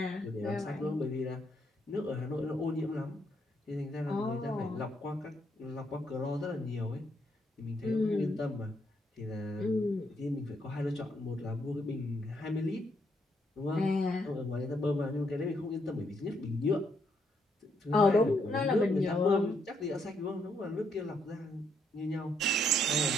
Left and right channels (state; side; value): normal; both; correlation 0.75